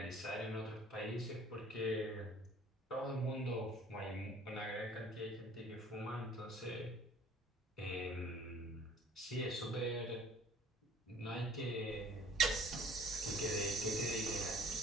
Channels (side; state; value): both; normal; correlation 0.52